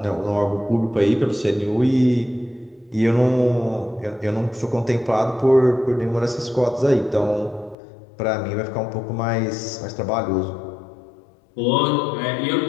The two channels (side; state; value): right; drops out; at 7.8 s